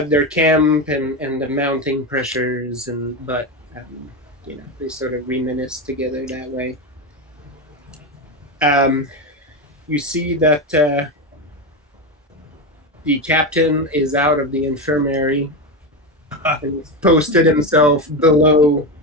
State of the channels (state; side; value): normal; both; correlation 0.15